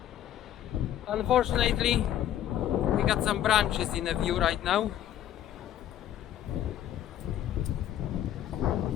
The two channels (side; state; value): right; quieter; 11.4 dB